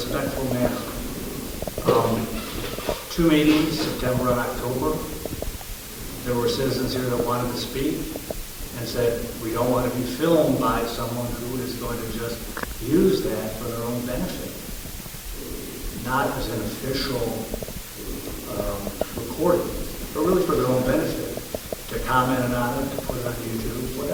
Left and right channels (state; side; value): identical; both; correlation 1.00